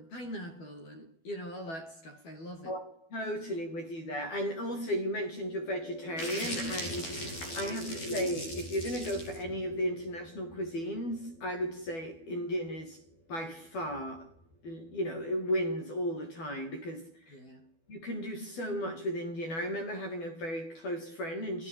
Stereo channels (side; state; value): right; late; 12 ms